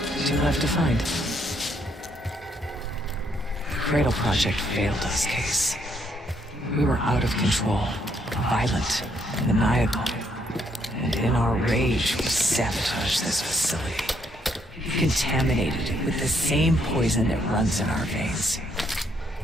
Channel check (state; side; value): normal; both; correlation 0.72